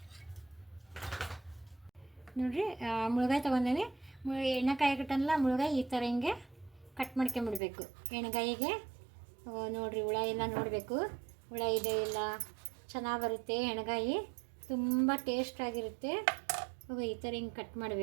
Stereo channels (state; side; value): drops out; left; at 7.6 s